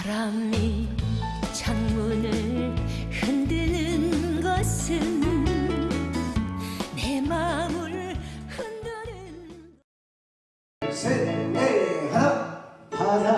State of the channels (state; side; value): identical; both; correlation 1.00